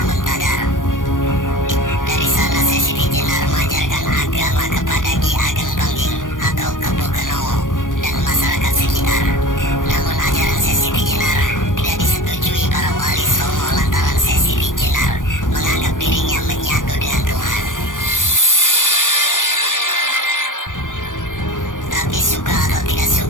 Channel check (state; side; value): late; right; 0.88 ms